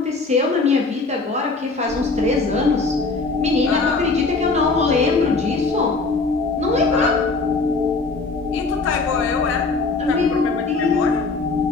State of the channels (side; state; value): right; quieter; 3.9 dB